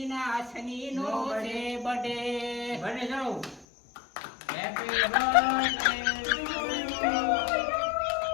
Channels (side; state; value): right; drops out; at 3.7 s